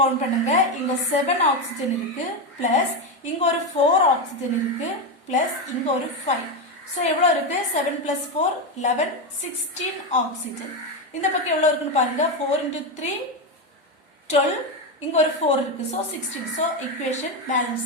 கவுண்ட் பண்ணுங்க. இங்க 7 ஆக்சிஜன் இருக்கு, பிளஸ் இங்க ஒரு 4 ஆக்சிஜன் இருக்கு, பிளஸ் இங்க ஒரு 5. ஸோ எவ்வளவு இருக்கு? 7 + 4 11 16 ஆக்சிஜன். இந்த பக்கம் எவ்வளவு இருக்குன்னு பாருங்க. 4 × 3 12, இங்க ஒரு 4 இருக்கு, ஸோ 16. ஸோ ஈக்குவேஷன் பேலன்ஸ்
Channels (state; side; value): normal; both; correlation 0.11